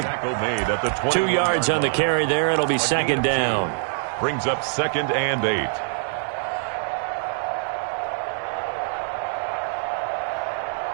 2 yards on the carry there. It'll be 2nd down. Brings up 2nd and 8.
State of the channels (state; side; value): silent; left; digital silence